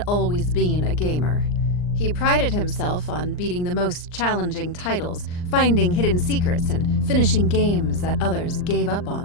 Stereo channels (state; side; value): late; right; 39 ms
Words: always been a gamer. He prided himself on beating the most challenging titles, finding hidden secrets, and finishing games that others gave up